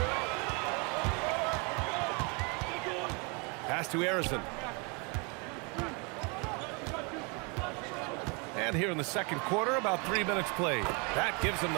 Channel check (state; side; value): quieter; left; 32.3 dB